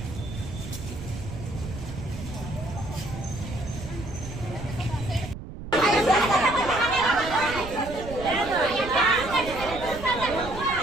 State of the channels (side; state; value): right; noise; rumble, 10 dB below the sound